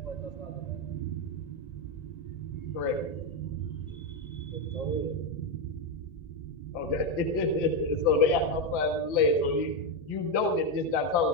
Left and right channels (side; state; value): right; late; 1.8 ms